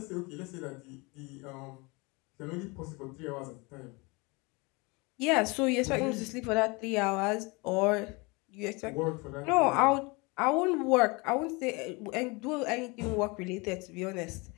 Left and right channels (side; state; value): right; quieter; 27.2 dB